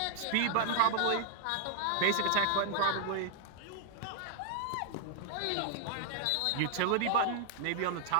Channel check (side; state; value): both; different; correlation -0.01